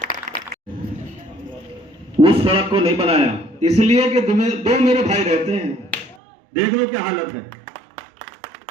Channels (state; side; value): drops out; left; at 6.2 s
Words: उस सड़क को नहीं बनाया इसलिए कि दो मेरे भाई रहते हैं। देख लो क्या हालत है।